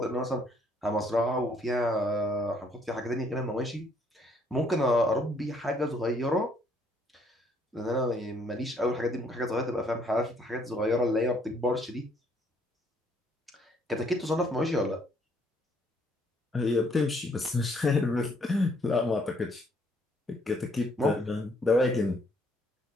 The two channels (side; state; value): both; normal; correlation 0.66